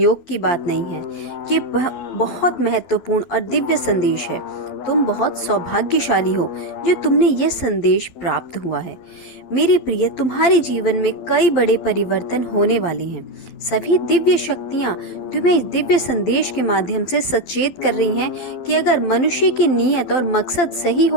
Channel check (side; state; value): right; late; 12 ms